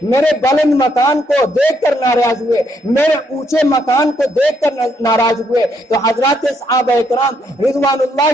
میرے بلند مکان کو دیکھ کر ناراض ہوئے، میرے اونچے مکان کو دیکھ کر ناراض ہوئے۔ تو حضرات صحابہ اکرام رضوان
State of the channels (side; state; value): both; normal; correlation 0.73